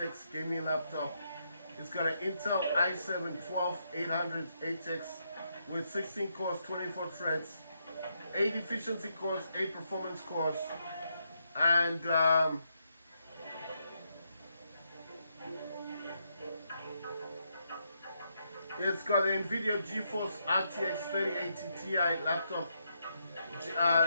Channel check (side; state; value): both; inverted; correlation -0.80